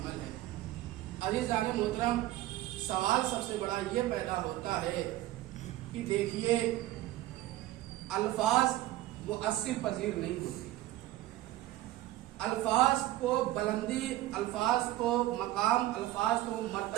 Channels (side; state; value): left; quieter; 15.5 dB